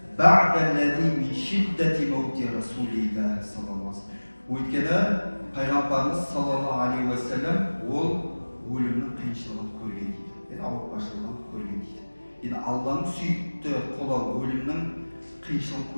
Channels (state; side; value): inverted; both; correlation -1.00